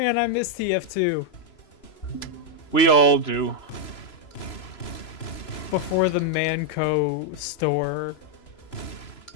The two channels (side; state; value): right; late; 3.0 ms